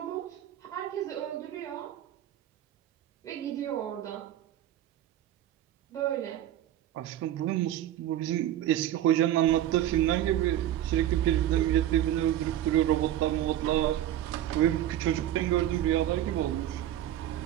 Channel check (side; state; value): left; quieter; 12.2 dB